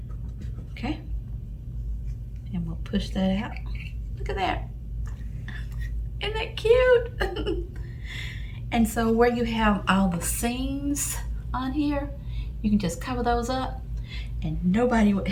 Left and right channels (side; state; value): both; identical; correlation 1.00